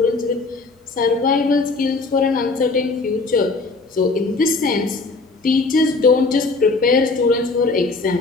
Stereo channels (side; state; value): right; quieter; 3.7 dB